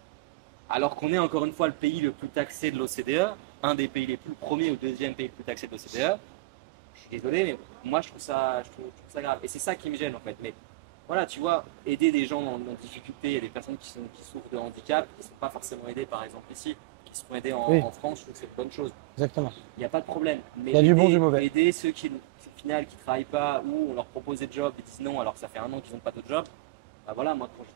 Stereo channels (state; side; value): quieter; left; 20.7 dB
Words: Alors qu'on est encore une fois le pays le plus taxé de l'OCDE, un des pays les plus, le premier ou le deuxième pays le plus taxé de l'OCDE. Je suis désolé, mais moi je trouve ça grave. Et c'est ça qui me gêne en fait. Mais voilà, tu vois, aider des gens en difficulté, il y a des personnes qui souffrent de handicap, qui ne sont pas forcément aidées par exemple ici, qui seront aidées Oui. en France, je trouve que c'est une bonne chose. Exactement. Il n'y a pas de problème. Mais Il y a du bon, du mauvais. aider ceux qui au final qui travaillent pas ou on leur propose des jobs, ils disent non alors que ça fait un an qu'ils n'ont pas de job. Ben voilà, moi quand